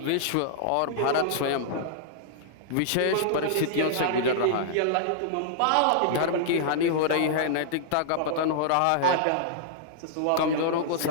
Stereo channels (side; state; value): both; different; correlation -0.01